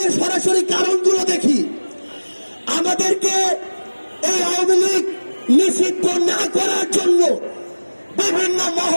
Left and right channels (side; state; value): both; inverted; correlation -1.00